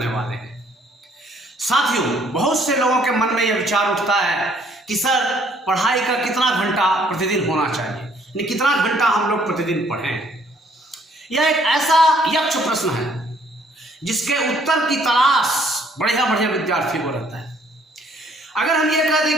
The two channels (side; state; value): both; normal; correlation 0.63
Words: वाले हैं। साथियों, बहुत से लोगों के मन में यह विचार उठता है कि सर पढ़ाई का कितना घंटा प्रतिदिन होना चाहिए, यानी कितना घंटा हम लोग प्रतिदिन पढ़ें। यह एक ऐसा यक्ष प्रश्न है जिसके उत्तर की तलाश बढ़िया बढ़िया विद्यार्थियों को रहता है। अगर हम ये कह